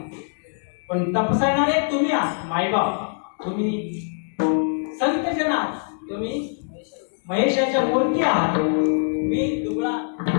पण तपसायणारे तुम्ही आहात मायबाप, तुम्ही संतजन आहात, तुम्ही महेशाच्या मूर्ती आहात. मी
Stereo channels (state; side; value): silent; right; digital silence